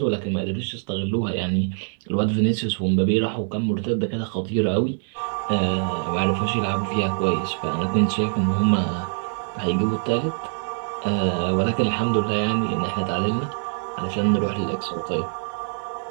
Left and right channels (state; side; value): silent; left; 63 dB below the other